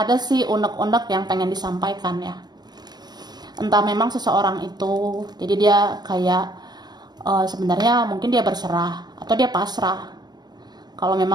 sih unek-unek yang pengen disampaikan ya. Entah memang seseorang itu, jadi dia kayak sebenarnya mungkin dia berserah, atau dia pasrah. Kalau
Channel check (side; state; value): left; late; 0.20 ms